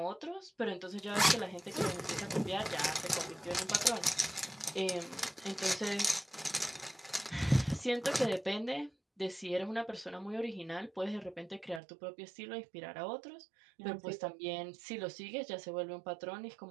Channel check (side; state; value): left; drops out; at 11.8 s